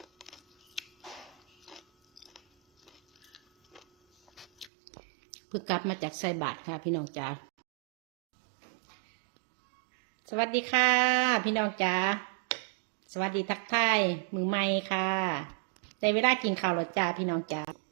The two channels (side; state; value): left; drops out; at 4.7 s